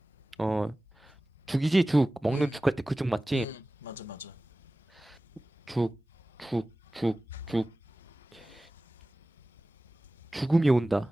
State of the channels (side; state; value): both; normal; correlation 0.97